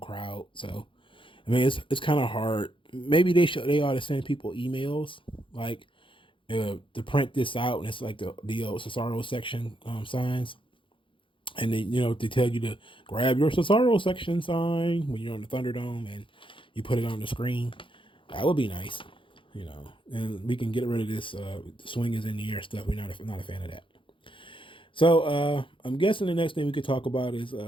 so I mean it's kind of hard. Maybe they ought to send people emails like to print this out, and it's like the old Cesaro section signs, and then they tell you to grab your Cesaro section sign when you're on the Thunderdome and you put it on the screen. That would be nice, and we can get rid of this the swing is in the air stuff. We're not a fan of that. So I'm guessing the next thing we could talk about is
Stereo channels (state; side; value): late; right; 0.25 ms